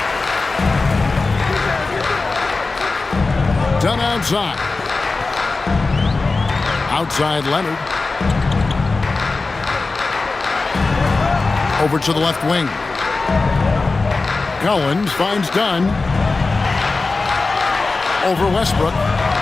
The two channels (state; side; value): quieter; right; 3.7 dB